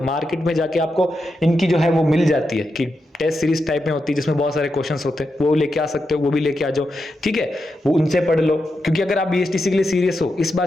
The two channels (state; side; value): normal; both; correlation 0.87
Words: मार्केट में जाके आपको इनकी जो है वो मिल जाती है कि टेस्ट सीरीज टाइप में होती है जिसमें बहुत सारे क्वेश्चंस होते हैं, वो लेके आ सकते हो, वो भी लेके आ जाओ, ठीक है, वो उनसे पढ़ लो। क्योंकि अगर आप बीएसटीसी के लिए सीरियस हो, इस बार